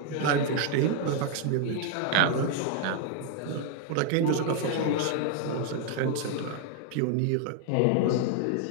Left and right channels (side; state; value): both; different; correlation 0.00